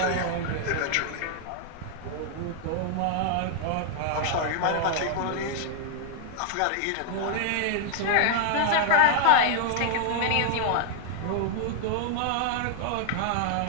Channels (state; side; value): different; both; correlation 0.00